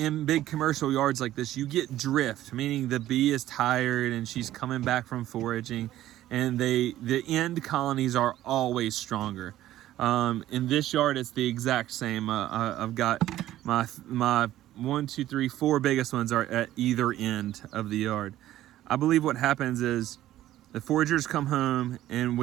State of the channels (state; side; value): quieter; left; 13.8 dB